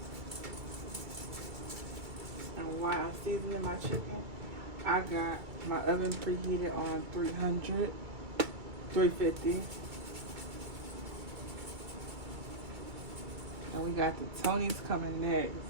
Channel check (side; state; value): left; late; 2.2 ms